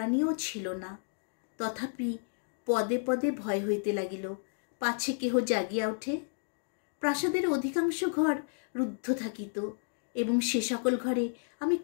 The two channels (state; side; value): silent; right; digital silence